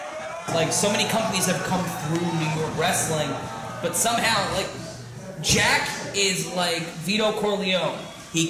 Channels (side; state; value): both; identical; correlation 1.00